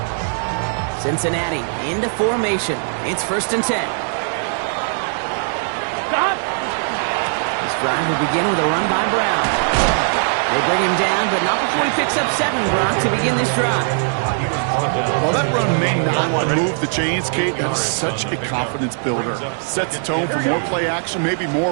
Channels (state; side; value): silent; left; digital silence